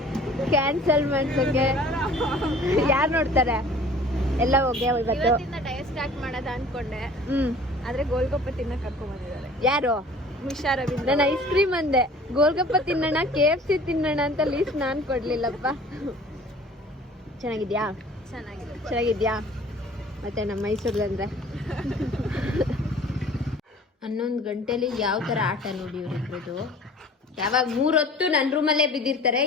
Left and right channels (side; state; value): both; normal; correlation 0.48